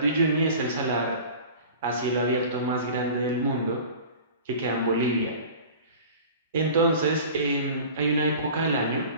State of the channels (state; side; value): inverted; both; correlation -0.40